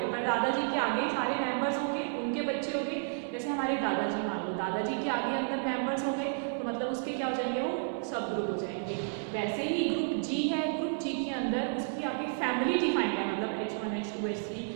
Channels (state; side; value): silent; left; 56 dB below the other